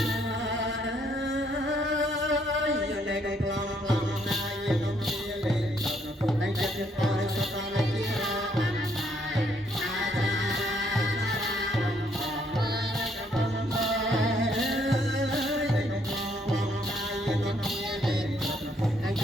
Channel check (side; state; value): both; normal; correlation 0.69